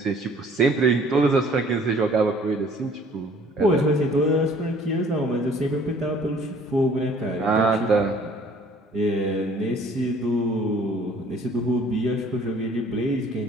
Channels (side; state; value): both; normal; correlation 0.55